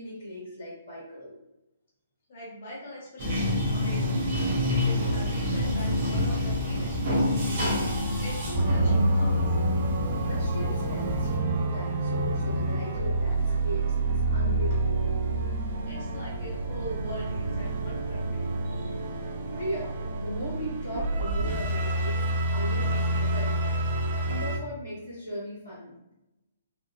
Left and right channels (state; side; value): inverted; both; correlation -0.58